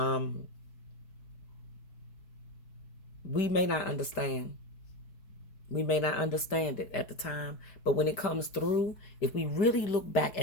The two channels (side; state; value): right; late; 5.1 ms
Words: We may not understand. We may not understand it at the time, but when it comes through, if we really look back